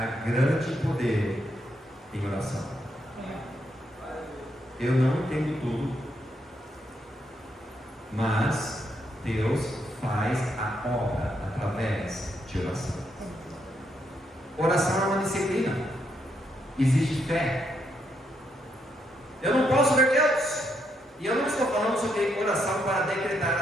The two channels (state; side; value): normal; both; correlation 0.77